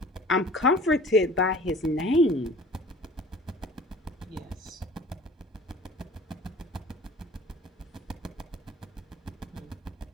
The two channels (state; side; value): normal; both; correlation 0.47